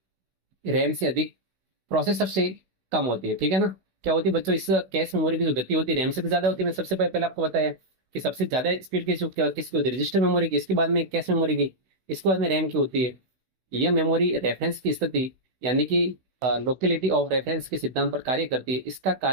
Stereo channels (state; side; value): late; left; 16 ms